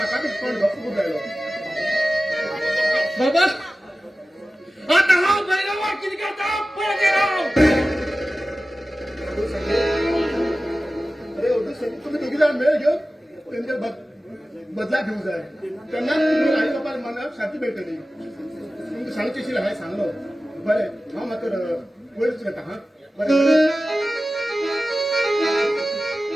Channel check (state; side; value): normal; both; correlation 0.96